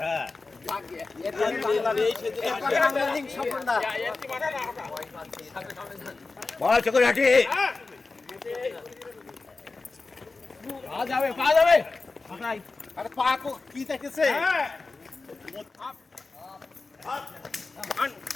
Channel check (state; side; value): quieter; right; 3.8 dB